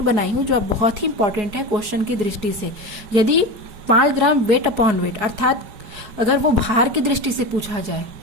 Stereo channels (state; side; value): late; left; 4.7 ms